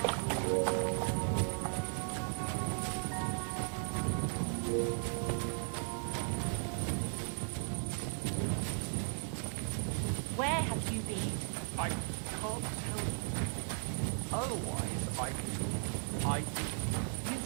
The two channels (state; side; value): silent; left; 53 dB below the other